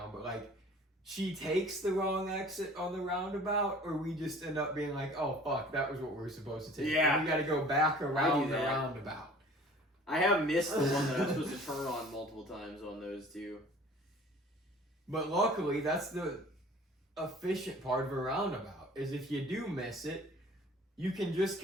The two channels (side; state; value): both; normal; correlation 0.48